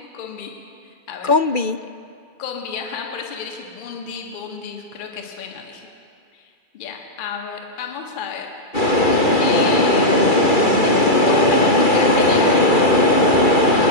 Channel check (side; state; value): right; late; 2.4 ms